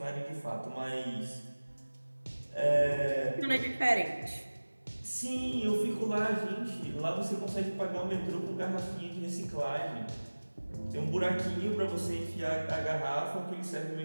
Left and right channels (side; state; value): both; inverted; correlation -1.00